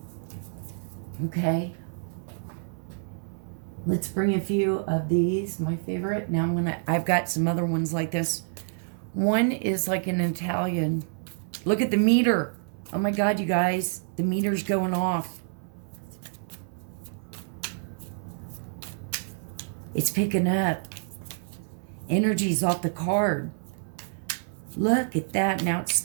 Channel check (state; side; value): silent; left; 59 dB below the other